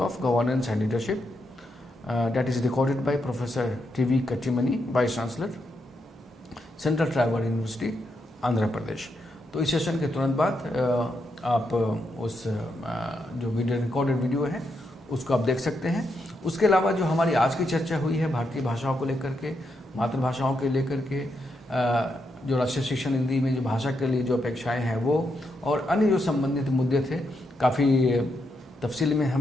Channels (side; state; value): both; normal; correlation 0.81